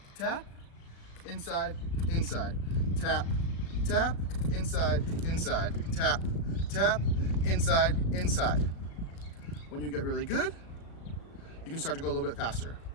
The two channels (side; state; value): right; late; 36 ms